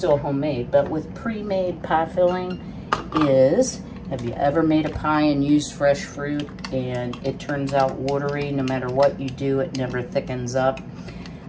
homemade, but with pre-made pie filling is, have you ever made a pie and used fresh fruit and it turns out watery? No matter what you do, it never thickens up.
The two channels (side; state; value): both; identical; correlation 1.00